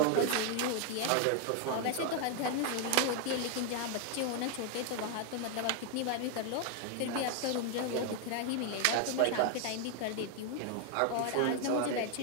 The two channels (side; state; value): both; different; correlation 0.00